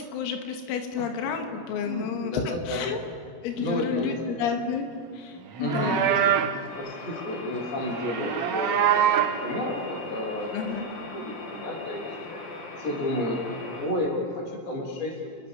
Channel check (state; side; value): late; right; 17 ms